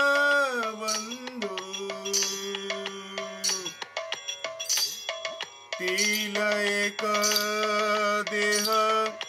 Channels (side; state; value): both; identical; correlation 1.00